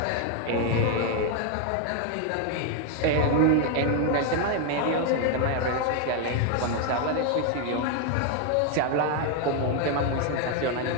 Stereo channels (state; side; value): different; both; correlation 0.01